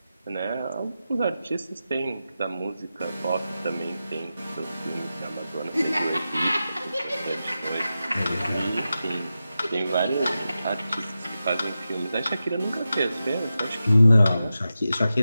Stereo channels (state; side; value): inverted; both; correlation -0.92